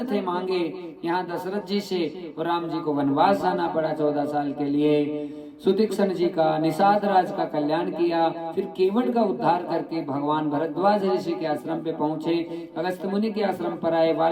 थे मांगे यहाँ दशरथ जी से, और राम जी को वनवास जाना पड़ा 14 साल के लिए। सुतीक्षण जी का, निषाद राज का कल्याण किया, फिर केवट का उद्धार करके भगवान भरद्वाज ऋषि के आश्रम पे पहुंचे, अगस्त मुनि के आश्रम पर आए,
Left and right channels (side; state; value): both; identical; correlation 1.00